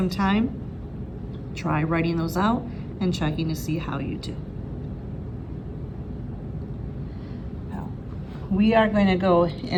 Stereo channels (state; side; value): identical; both; correlation 1.00